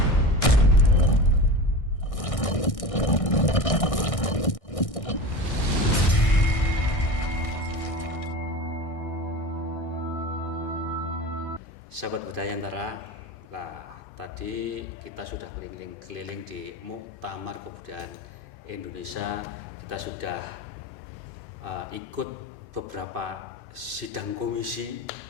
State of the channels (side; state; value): right; late; 1.6 ms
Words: Sahabat Budaya Antara, nah tadi kita sudah keliling-keliling di Muktamar Kebudayaan Indonesia. Kita sudah ikut beberapa sidang komisi